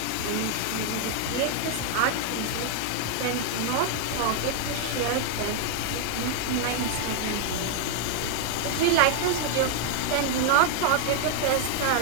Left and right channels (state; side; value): different; both; correlation 0.00